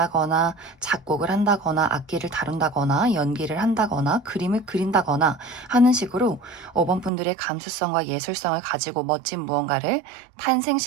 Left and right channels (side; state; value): left; drops out; at 7.1 s